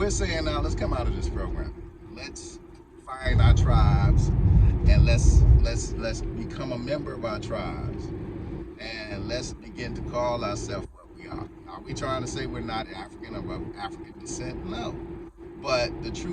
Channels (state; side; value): identical; both; correlation 1.00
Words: saying now, let's come out of this program. Let's find our tribes, and let's become a member of our tribes, and let's begin to call ourselves what we are. Are we trying to say we're not African or of African descent? No. But the